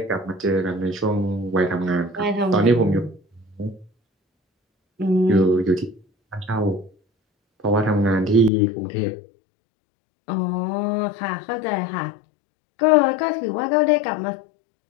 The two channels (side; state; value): right; drops out; at 8.5 s